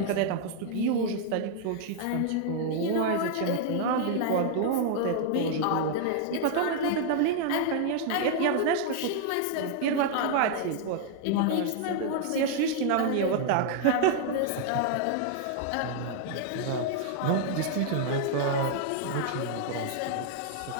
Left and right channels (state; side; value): different; both; correlation -0.01